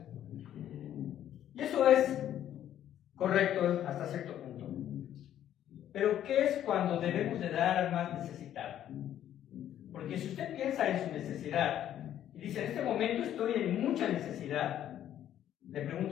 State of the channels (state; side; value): quieter; right; 11.2 dB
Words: Y eso es correcto hasta cierto punto. Pero ¿qué es cuando debemos de dar al más necesitado? Porque si usted piensa en su necesidad y dice, en este momento estoy en mucha necesidad, le